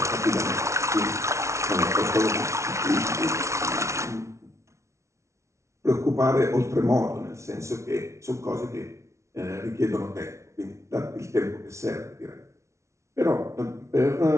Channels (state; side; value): late; left; 0.14 ms